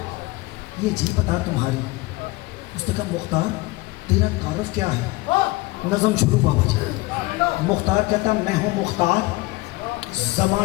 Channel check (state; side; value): quieter; right; 21.3 dB